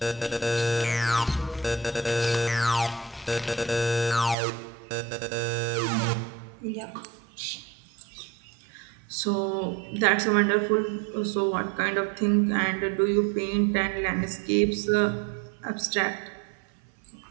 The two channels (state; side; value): drops out; left; at 4.4 s